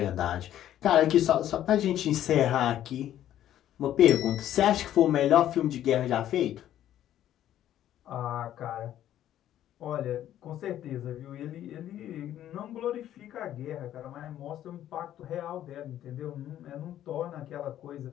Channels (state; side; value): quieter; right; 11.8 dB